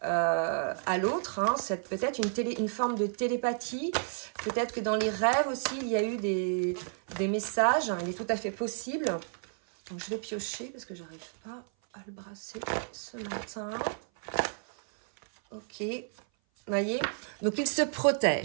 à l'autre, hein, c'est peut-être une forme de télépathie, peut-être que dans les rêves aussi il y a eu des messages, hein, il est tout à fait possible. Donc je vais piocher parce que j'arrive pas à le brasser ce matin. Ok, vous voyez, donc il se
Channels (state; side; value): silent; left; 56 dB below the other